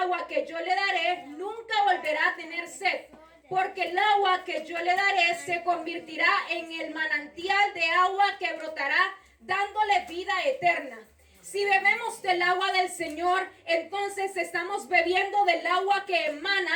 que yo le daré, nunca volverá a tener sed, porque el agua que yo le daré se convertirá en el manantial de agua que brotará, dándole vida eterna. Si bebemos del agua del Señor, entonces estamos bebiendo del agua que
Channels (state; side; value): identical; both; correlation 1.00